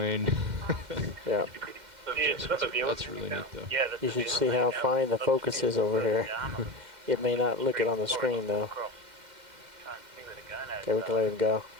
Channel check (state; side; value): late; left; 2.1 ms